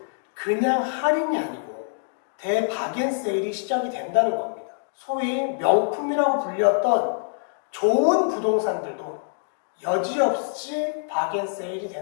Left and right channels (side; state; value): right; silent; digital silence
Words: 그냥 할인이 아니고 대바겐세일이 시작이 된다는 겁니다. 소위 명품이라고 불렸던 좋은 부동산들도 여지없이 바겐세일이